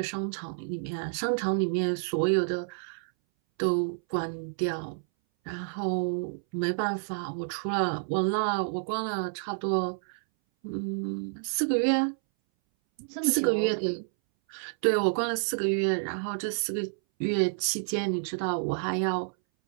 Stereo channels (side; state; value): left; silent; 58 dB below the other